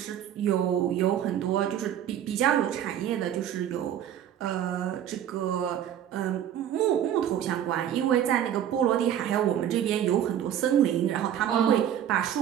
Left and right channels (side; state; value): left; quieter; 10.3 dB